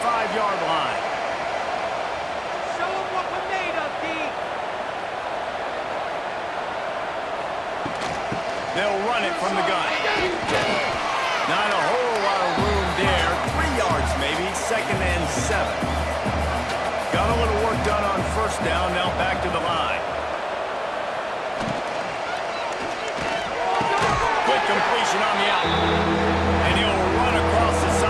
line. Show them what we're made of, D. They'll run it from the gun. Not a whole lot of room there. 3 yards maybe. 2nd and 7. Got a little work done on first down. Now back to the line. Quick completion on the out. And he'll run across the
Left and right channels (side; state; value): both; identical; correlation 1.00